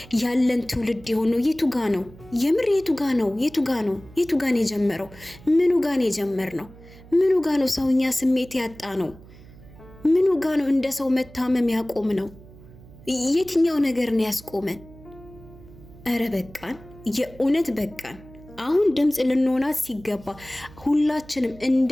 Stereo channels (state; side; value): noise; right; hum, 21 dB below the sound